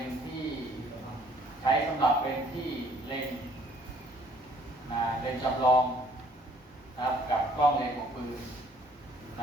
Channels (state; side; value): normal; both; correlation 0.60